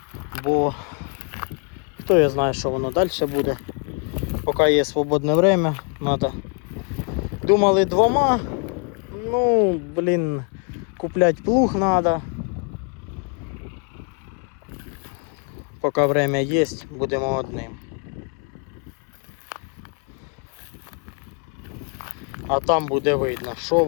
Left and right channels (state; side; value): quieter; right; 38.2 dB